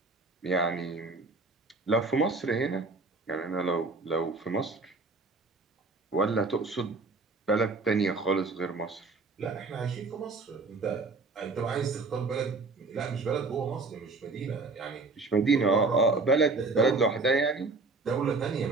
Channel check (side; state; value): left; quieter; 3.7 dB